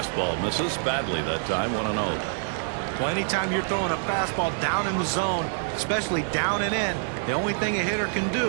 misses badly that time. 1-0. Well, anytime you're throwing a fastball down in the zone, especially down and in, the only thing a hitter can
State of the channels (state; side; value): silent; left; 58 dB below the other